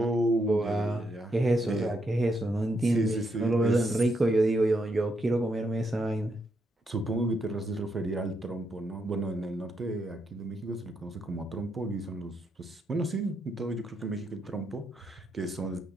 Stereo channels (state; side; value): normal; both; correlation 0.79